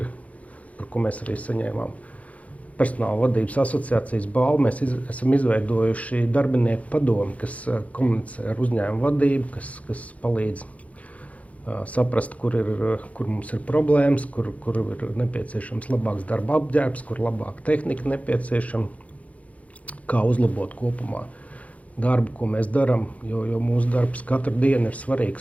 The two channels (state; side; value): late; right; 0.067 ms